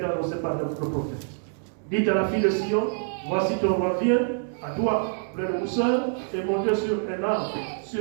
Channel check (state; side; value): silent; left; 61 dB below the other